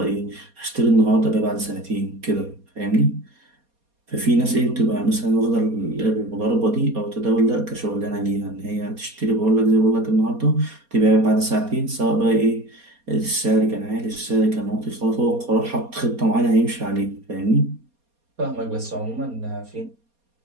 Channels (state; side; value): late; left; 4.2 ms